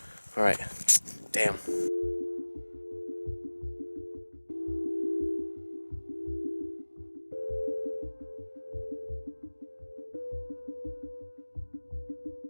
All right. Damn.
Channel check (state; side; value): inverted; both; correlation -1.00